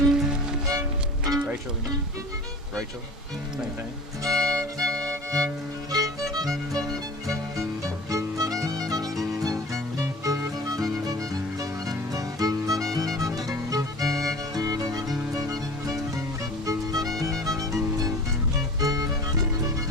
Rachel, you mean? Rachel, same thing.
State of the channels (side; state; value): both; normal; correlation 0.39